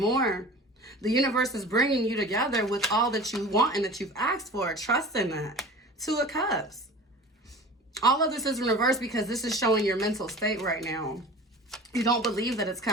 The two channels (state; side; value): normal; both; correlation 0.39